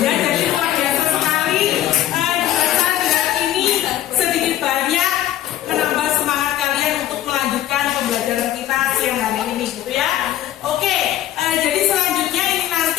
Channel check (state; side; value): quieter; right; 12.8 dB